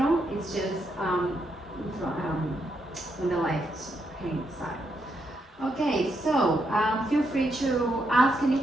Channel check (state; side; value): normal; both; correlation 0.79